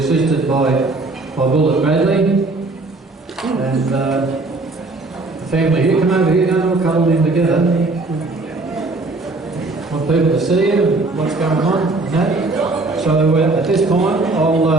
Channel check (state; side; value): quieter; left; 3.2 dB